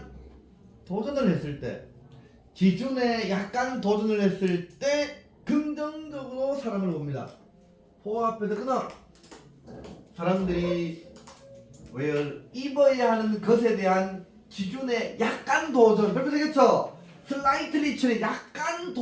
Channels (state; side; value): identical; both; correlation 1.00